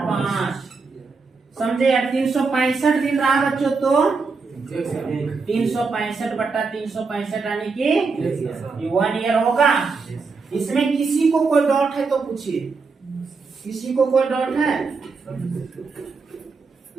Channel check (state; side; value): quieter; left; 4.6 dB